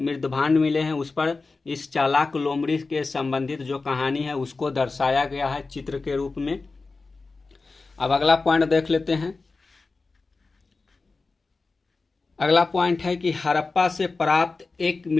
मिले हैं उस पर इस चालाक लोमड़ी के संबंधित जो कहानी है उसको दर्शाया गया है चित्र के रूप में। अब अगला पॉइंट देख लेते हैं। अगला पॉइंट है कि हड़प्पा से प्राप्त एक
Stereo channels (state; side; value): quieter; right; 3.9 dB